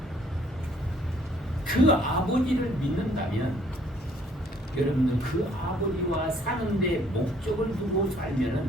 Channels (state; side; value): normal; both; correlation 0.62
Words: 그 아버지를 믿는다면 여러분들 그 아버지와 사는데 목적을 두고